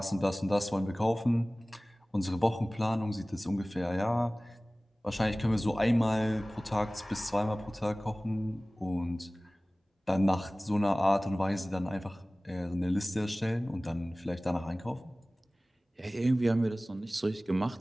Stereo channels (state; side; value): normal; both; correlation 0.98